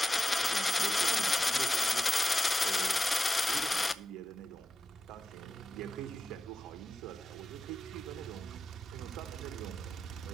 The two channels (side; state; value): both; normal; correlation 0.92